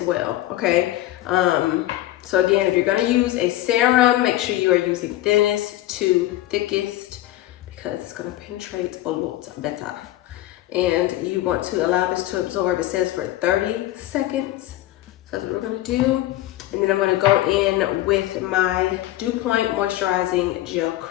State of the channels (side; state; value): right; quieter; 15.2 dB